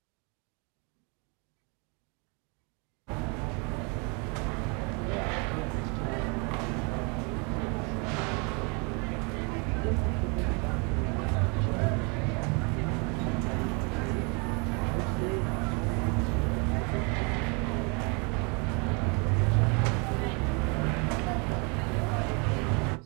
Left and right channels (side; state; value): left; quieter; 32.6 dB